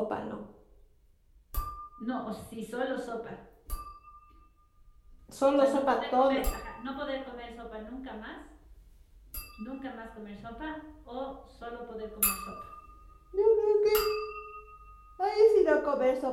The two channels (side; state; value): both; identical; correlation 1.00